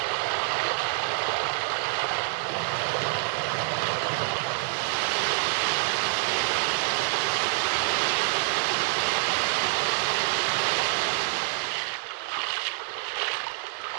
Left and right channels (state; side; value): silent; left; 60 dB below the other